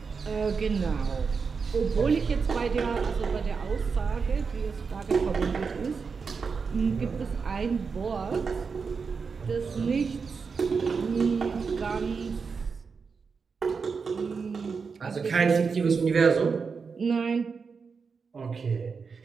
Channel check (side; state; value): left; quieter; 5.3 dB